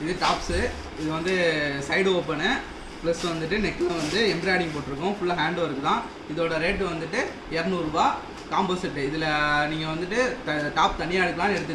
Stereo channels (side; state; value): both; identical; correlation 1.00